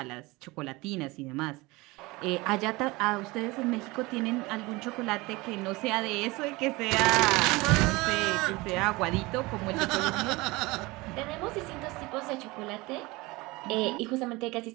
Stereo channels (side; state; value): left; quieter; 22.6 dB